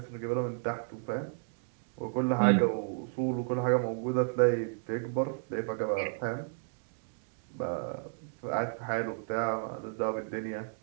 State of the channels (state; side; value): silent; left; digital silence